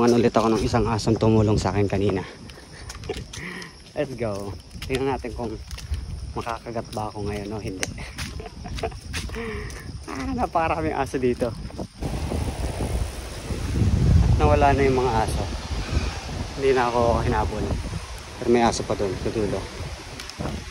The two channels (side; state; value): both; identical; correlation 1.00